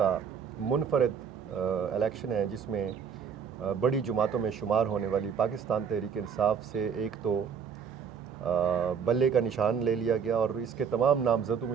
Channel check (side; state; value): left; quieter; 6.9 dB